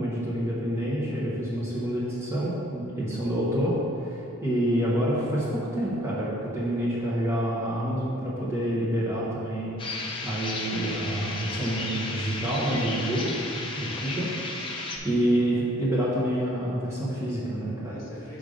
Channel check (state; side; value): normal; both; correlation 0.62